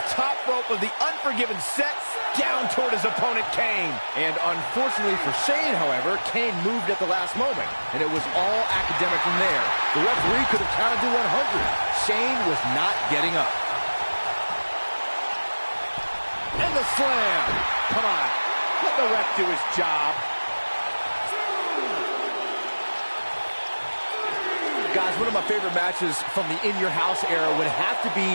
top rope of the Unforgiven set down toward his opponent, Kane. And unfortunately for Shane, however, Kane moved at the last moment, and it was all academic from there. The referee could have counted to 100. Shane was not getting up. And the slam. Come on, let the ref do his job. Guys, one of my favorite matches from the In Your House era would have to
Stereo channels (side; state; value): both; inverted; correlation -1.00